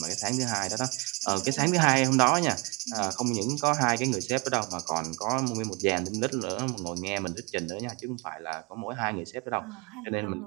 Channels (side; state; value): left; quieter; 27.1 dB